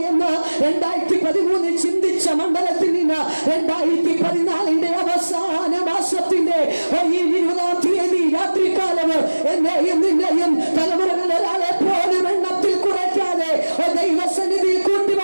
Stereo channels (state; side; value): inverted; both; correlation -1.00